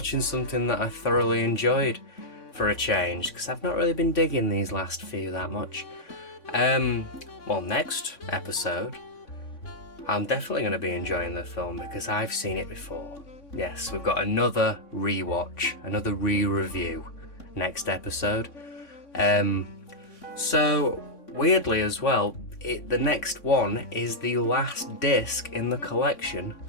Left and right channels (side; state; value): right; late; 3.6 ms